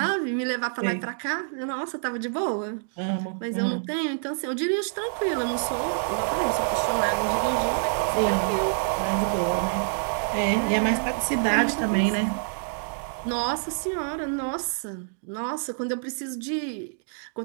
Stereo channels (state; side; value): silent; left; digital silence